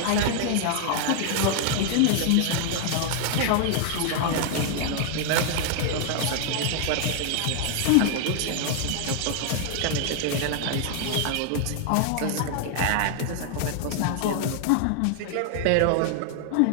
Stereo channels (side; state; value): both; different; correlation 0.00